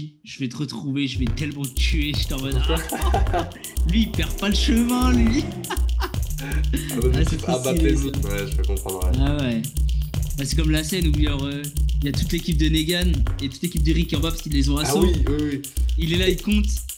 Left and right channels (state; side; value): identical; both; correlation 1.00